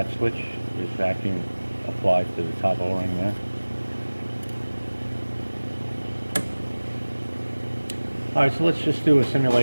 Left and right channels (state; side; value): inverted; both; correlation -1.00